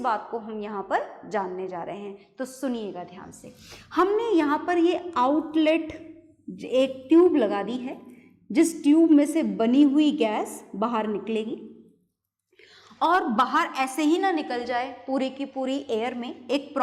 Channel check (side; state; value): both; identical; correlation 1.00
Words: को हम यहाँ पर जानने जा रहे हैं। तो सुनिएगा ध्यान से, हमने यहाँ पर ये आउटलेट एक ट्यूब लगा दी है, जिस ट्यूब में से बनी हुई गैस बाहर निकलेगी, और बाहर ऐसे ही ना निकल जाए पूरी की पूरी एयर में, एक